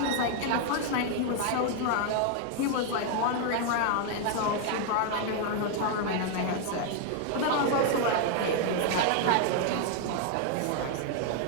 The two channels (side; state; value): both; different; correlation 0.00